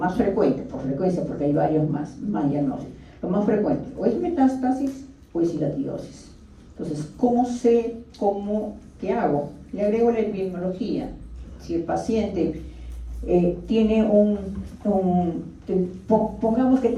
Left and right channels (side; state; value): both; identical; correlation 1.00